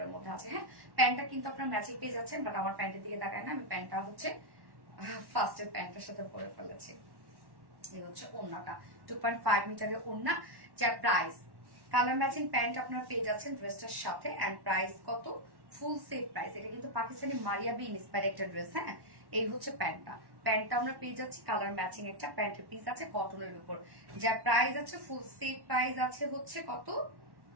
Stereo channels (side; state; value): left; late; 1.1 ms